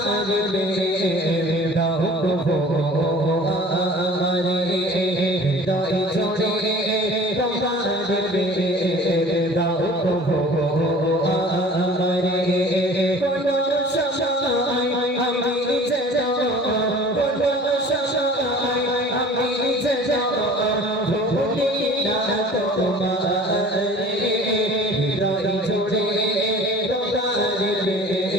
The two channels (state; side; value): normal; both; correlation 0.45